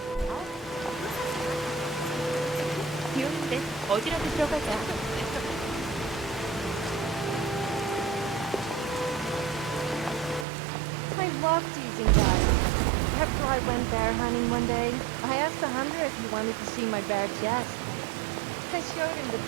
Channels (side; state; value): left; drops out; at 10.5 s